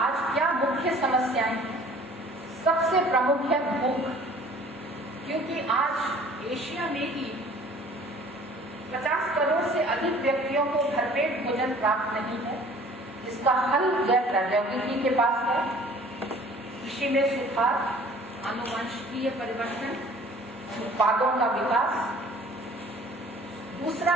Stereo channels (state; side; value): normal; both; correlation 0.51